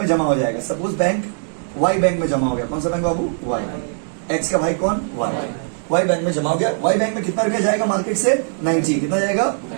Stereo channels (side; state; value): left; silent; digital silence